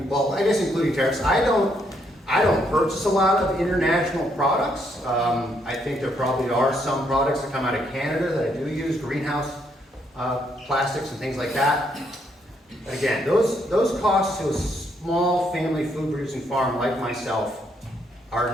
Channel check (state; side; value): normal; both; correlation 0.73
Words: well, I guess including tariffs, I don't purchase a lot of international products. I think there probably are some products that come out of Canada that I do use, greenhouse plastics and things like that. But again, those costs to a small family food producing farm like myself